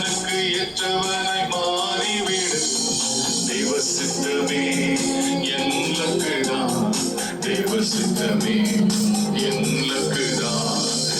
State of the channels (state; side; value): identical; both; correlation 1.00